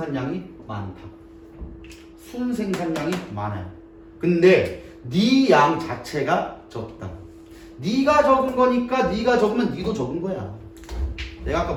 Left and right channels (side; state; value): both; identical; correlation 1.00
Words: 많다. 순생산량이 많아요. 근데 네 양 자체가 적다. 네가 적은 거니까 네가 적으면 네도 적은 거야. 내가 아까